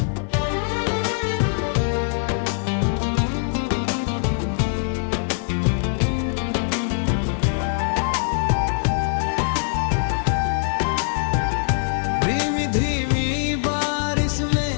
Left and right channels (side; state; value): right; silent; 63 dB below the other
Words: धीमी धीमी बारिश